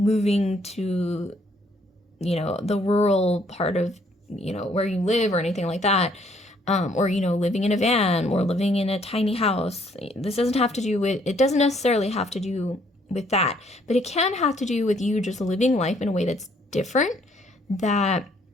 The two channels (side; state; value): both; normal; correlation 0.65